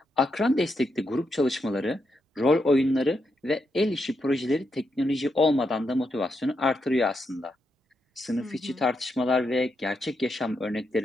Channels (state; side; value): normal; both; correlation 0.82